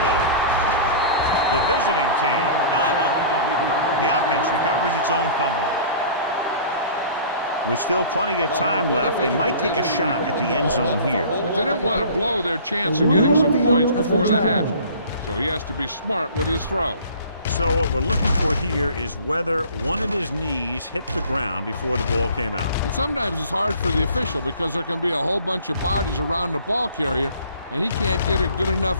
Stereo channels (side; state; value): both; inverted; correlation -0.46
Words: The visiting team dive on the fumble. The offense recovers its own fumble. With still plenty of time left, they might take a shot at the end zone here. But they didn't want to blow their chance of getting some points before the half. So he has to be smart with his throw. So what we're looking for here is whether one of his knees hit the ground before the ball came out. And sometimes it's hard for the official because there can be a whole bunch of bodies around the ball carrier, and he can't get a good